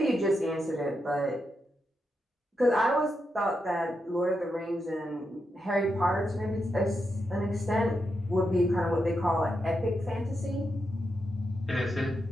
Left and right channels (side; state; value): both; normal; correlation 0.85